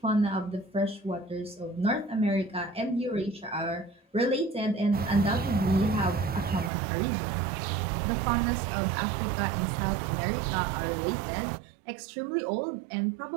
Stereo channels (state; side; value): drops out; left; at 6.7 s